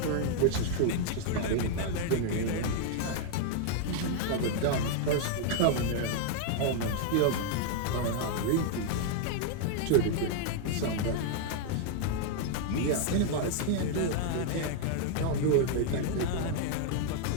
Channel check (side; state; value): both; different; correlation 0.00